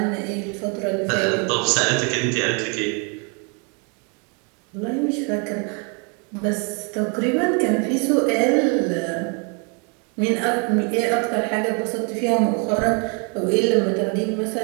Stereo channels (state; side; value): quieter; left; 35.4 dB